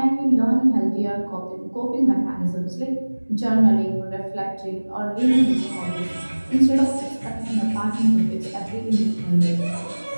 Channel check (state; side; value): inverted; both; correlation -1.00